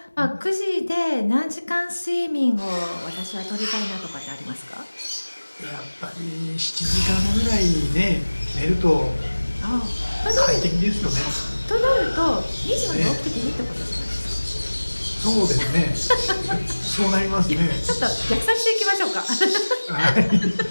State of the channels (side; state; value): both; inverted; correlation -1.00